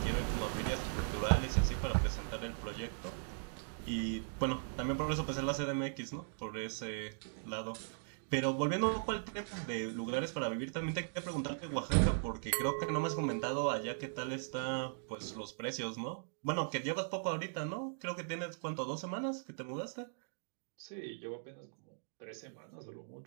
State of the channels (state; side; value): silent; left; digital silence